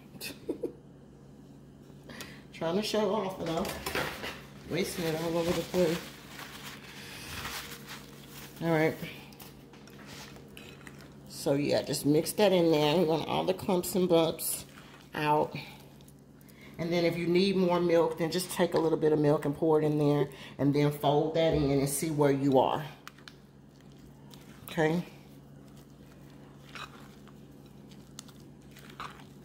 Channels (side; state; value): both; identical; correlation 1.00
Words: Trying to show off, and I'm wasting it all over the place. All right. So yeah, just mix that in there. We want all the clumps and bumps out. And then if you need more milk, then just take a little bit of milk and pour it in there. And then fold that in and see where you are. Okay.